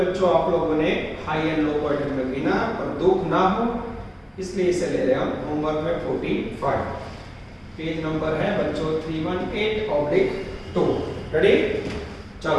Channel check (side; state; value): both; identical; correlation 1.00